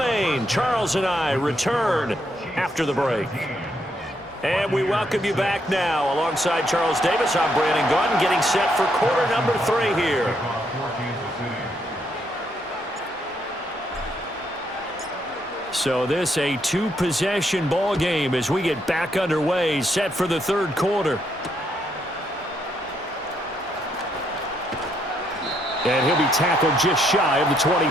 Charles and I return after the break. And we welcome you back now. Alongside Charles Davis, I'm Brandon Gaudin, getting set for quarter number 3 here. So this a 2-possession ball game as we get back underway, set for the 3rd quarter. And he'll be tackled just shy of the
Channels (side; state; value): both; normal; correlation 0.75